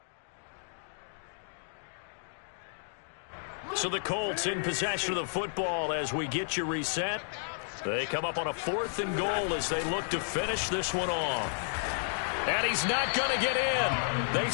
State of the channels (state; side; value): silent; right; digital silence